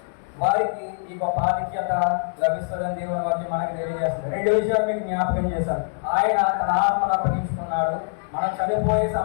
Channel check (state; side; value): silent; right; digital silence